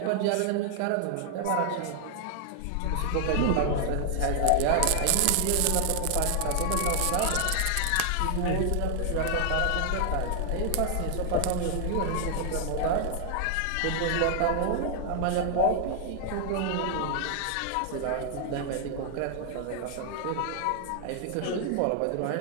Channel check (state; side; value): different; both; correlation 0.00